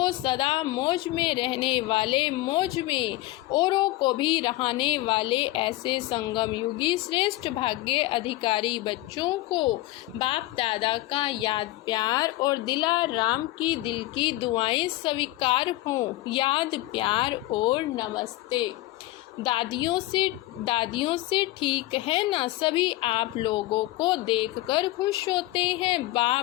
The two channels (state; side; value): quieter; right; 17.7 dB